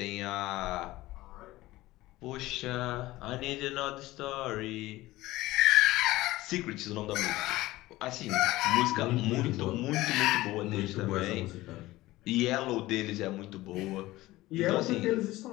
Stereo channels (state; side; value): quieter; right; 17.9 dB